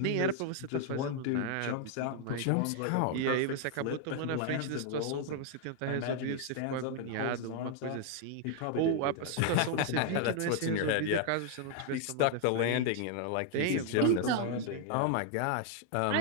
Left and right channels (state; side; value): different; both; correlation 0.00